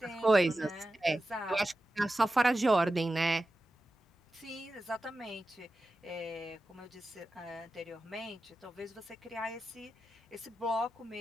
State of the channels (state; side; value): normal; both; correlation 0.93